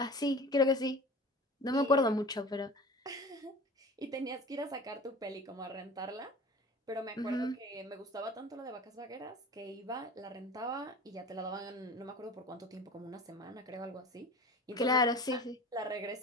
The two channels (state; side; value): normal; both; correlation 0.38